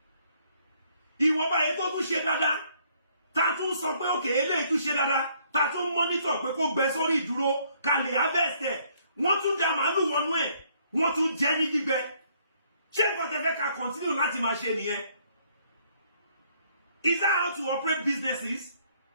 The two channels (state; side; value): inverted; both; correlation -0.66